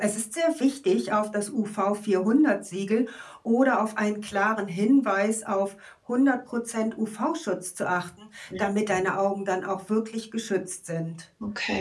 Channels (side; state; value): both; identical; correlation 1.00